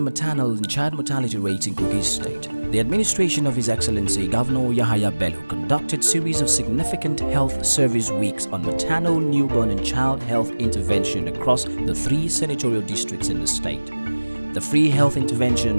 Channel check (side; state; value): both; inverted; correlation -1.00